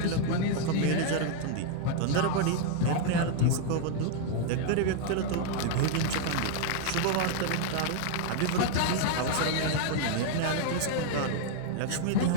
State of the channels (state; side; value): different; both; correlation 0.00